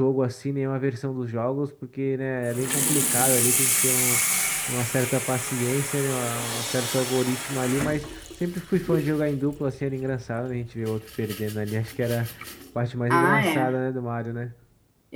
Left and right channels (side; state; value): both; identical; correlation 1.00